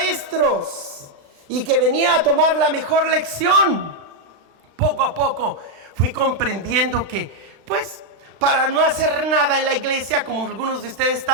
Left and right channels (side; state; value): left; late; 36 ms